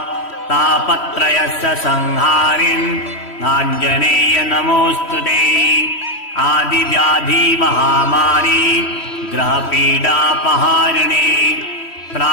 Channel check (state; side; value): late; right; 3.1 ms